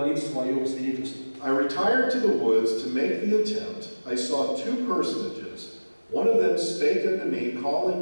в своем свидетельстве. I retired to the woods to make the attempt. I saw two personages. One of them spake unto me, calling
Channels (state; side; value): inverted; both; correlation -1.00